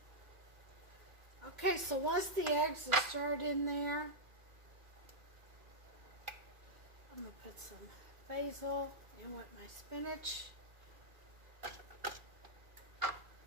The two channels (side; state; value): left; late; 2.4 ms